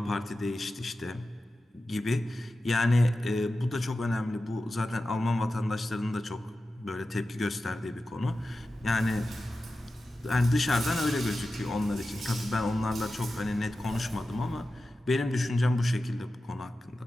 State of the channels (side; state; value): both; normal; correlation 0.93